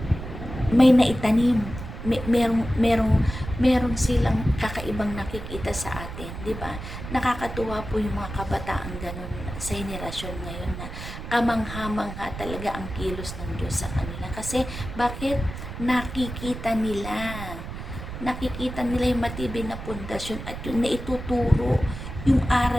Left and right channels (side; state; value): right; noise; rumble, 9 dB below the sound